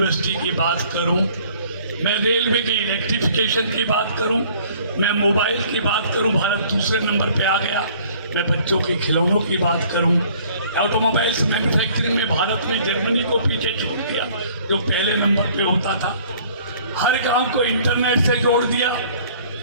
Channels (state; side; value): inverted; both; correlation -0.55